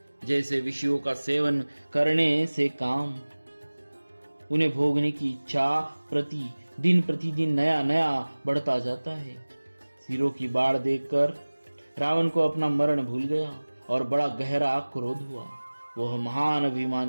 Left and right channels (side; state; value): both; inverted; correlation -1.00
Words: जैसे विषयों का सेवन करने से काम, उन्हें भोगने की इच्छा प्रतिदिन नया बढ़ता जाता है। सिरों की बाढ़ देखकर रावण को अपना मरण भूल गया और बड़ा गहरा क्रोध हुआ। वह महान